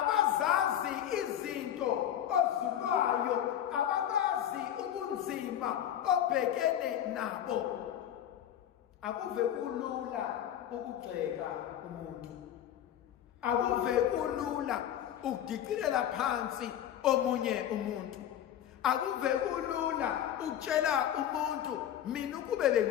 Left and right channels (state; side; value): quieter; right; 10.7 dB